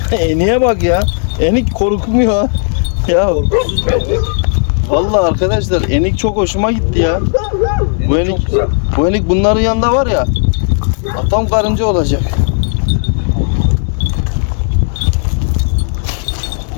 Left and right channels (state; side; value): silent; right; digital silence